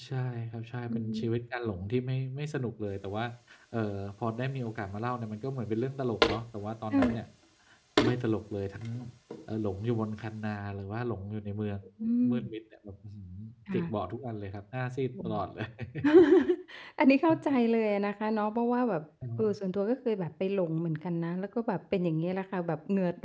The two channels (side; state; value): both; identical; correlation 1.00